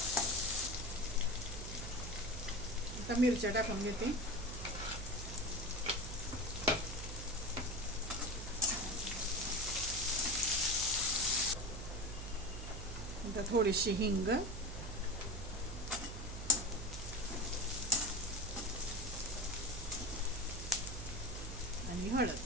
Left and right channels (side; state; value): right; noise; hum, 7 dB below the sound